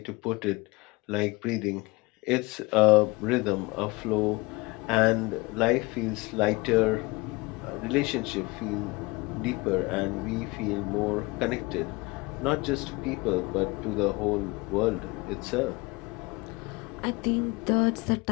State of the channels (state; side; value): quieter; right; 24.3 dB